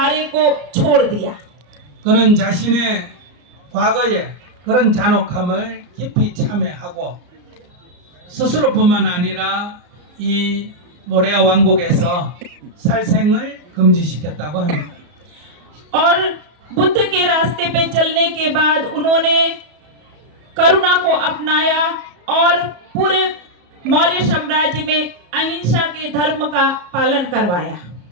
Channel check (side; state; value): left; late; 34 ms